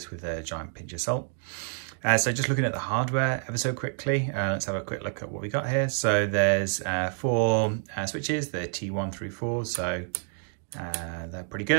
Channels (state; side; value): silent; left; digital silence